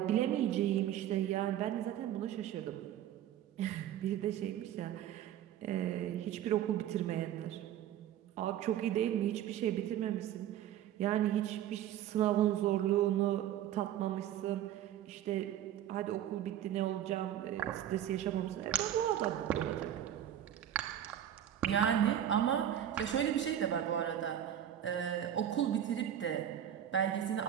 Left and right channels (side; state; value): left; quieter; 11.0 dB